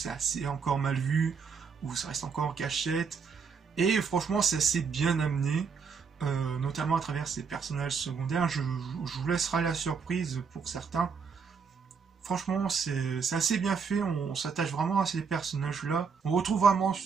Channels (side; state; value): left; quieter; 5.8 dB